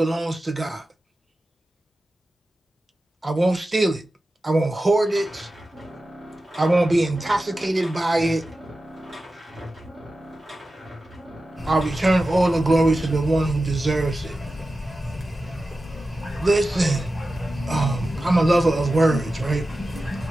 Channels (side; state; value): both; normal; correlation 0.93